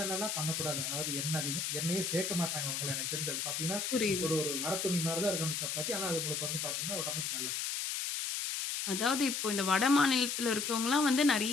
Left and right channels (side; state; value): left; noise; hiss, 1 dB below the sound